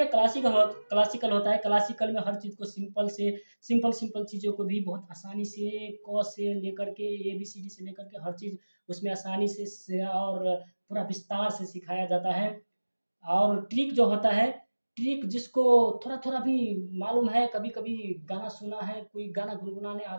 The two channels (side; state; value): both; inverted; correlation -1.00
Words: क्लासिकल होता है। क्लासिकल में हर चीज़ को सिंपल चीज़ों को भी बहुत आसानी से क से लेकर के एबीसीडी से लेकर के हर चीज़ उसमें आसानी से और पूरा विस्तार से सिखाया जाता है। और ट्रिक जो होता है, ट्रिक जिसको थोड़ा-थोड़ा भी मालूम है, कभी-कभी गाना सुना है, कोई गाना गुनगुनाने